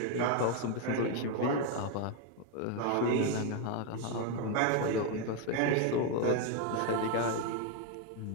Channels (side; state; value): both; different; correlation 0.01